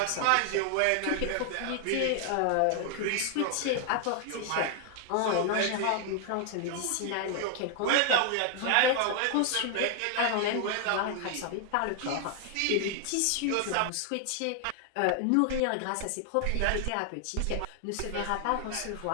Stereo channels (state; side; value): different; both; correlation 0.00